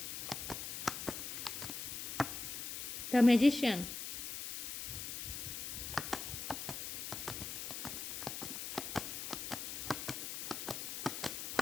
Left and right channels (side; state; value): left; noise; hiss, 5 dB below the sound